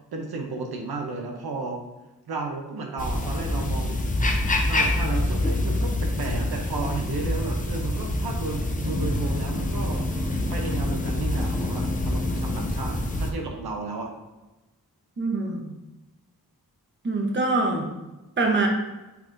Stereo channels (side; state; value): both; normal; correlation 0.62